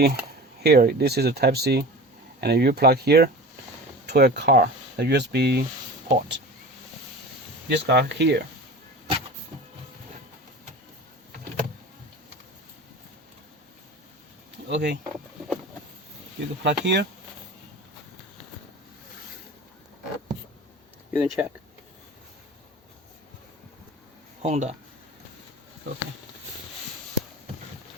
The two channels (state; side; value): normal; both; correlation 0.35